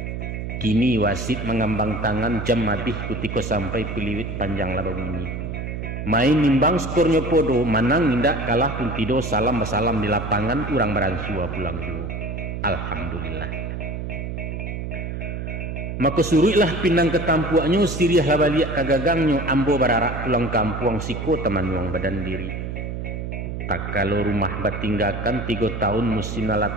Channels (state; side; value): noise; right; hum, 5 dB below the sound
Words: Kini wasit mengambang tangan jam mabih kutiko sampai piliwit panjang laba bunyi. Main nimbang skornya podo, manang indak kalah pun tido salam di lapangan urang beransua pulang juga. Alhamdulillah. Maka suruhlah pinang ketampuaknya siriah labaliak kagagangnya ambo bararak pulang kampung siko teman uang badan diri. Tak kalau rumah batinggakan 3 tahun musim